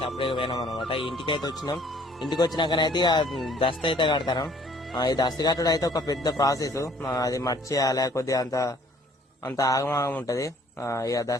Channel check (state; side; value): normal; both; correlation 0.58